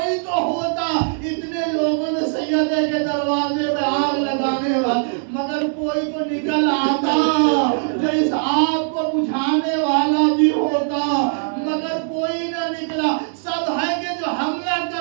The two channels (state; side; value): silent; left; digital silence